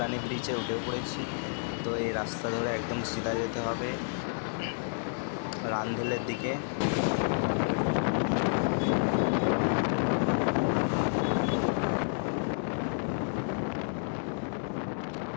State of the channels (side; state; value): right; silent; digital silence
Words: ব্রিজে উঠে পড়েছি। তো এই রাস্তা ধরে একদম সিধা যেতে হবে রানভেলের দিকে।